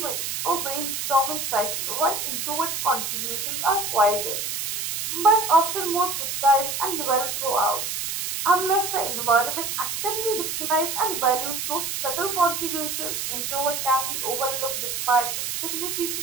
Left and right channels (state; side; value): noise; right; hiss, 3 dB below the sound